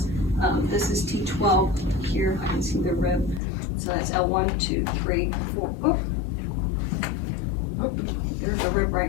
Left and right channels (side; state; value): right; drops out; at 3.4 s